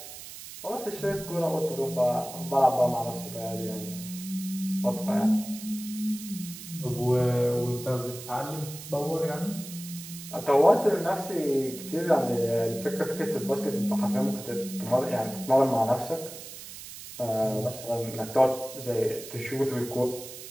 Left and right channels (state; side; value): noise; right; hiss, 13 dB below the sound